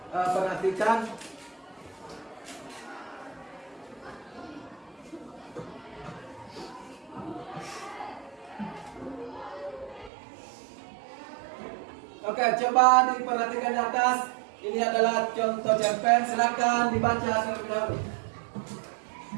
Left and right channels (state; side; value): drops out; left; at 10.1 s